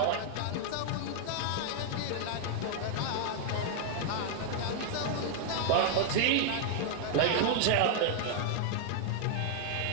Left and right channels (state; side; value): different; both; correlation 0.00